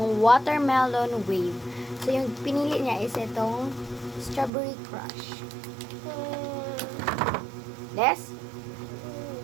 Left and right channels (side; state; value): left; drops out; at 4.5 s